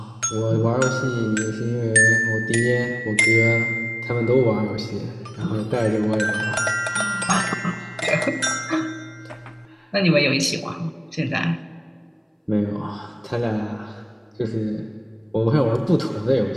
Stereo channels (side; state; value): both; identical; correlation 1.00